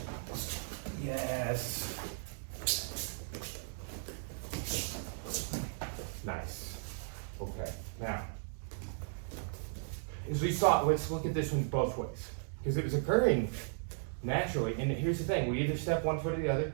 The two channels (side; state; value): left; silent; digital silence